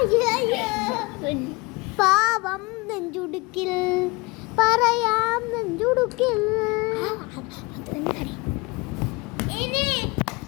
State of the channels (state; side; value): quieter; right; 25.3 dB